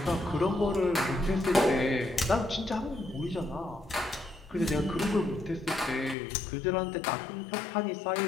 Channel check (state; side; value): drops out; right; at 6.2 s